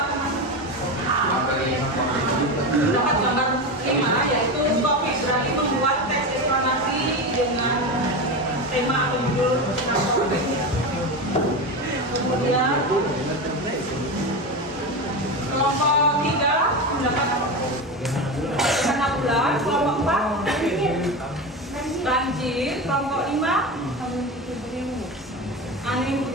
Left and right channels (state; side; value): normal; both; correlation 0.21